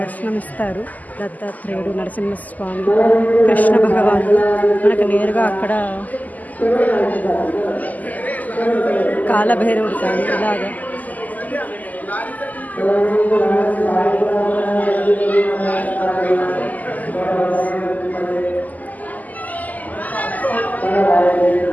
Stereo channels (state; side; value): late; right; 0.080 ms